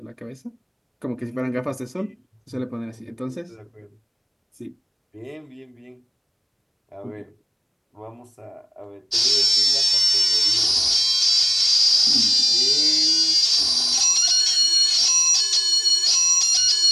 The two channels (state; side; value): identical; both; correlation 1.00